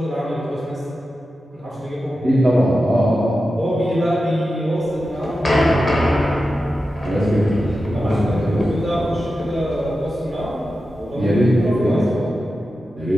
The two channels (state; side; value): normal; both; correlation 0.91